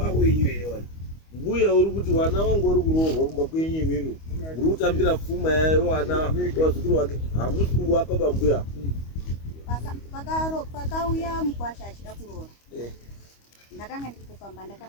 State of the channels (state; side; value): late; right; 25 ms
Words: wenyu ere wana. Mbuya uri kuti wana wangu uri kuroorwa kumba kwenyu imimi. Uri kutambira pfuma yayo wana wazukuru wake hamusi kuwapa bambuya. Pakauya mukwasha achida kuroora. Ndakanga ndiri kupamba